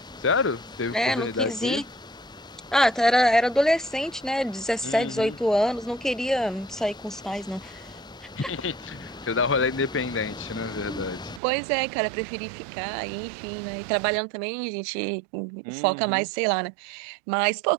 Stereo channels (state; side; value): drops out; left; at 11.4 s